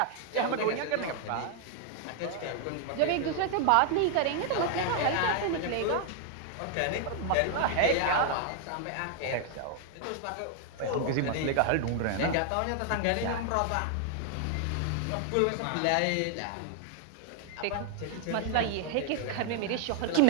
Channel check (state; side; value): different; both; correlation 0.00